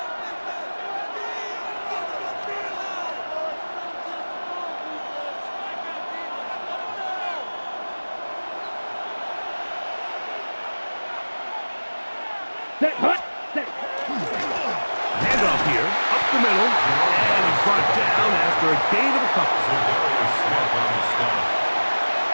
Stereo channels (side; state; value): both; inverted; correlation -1.00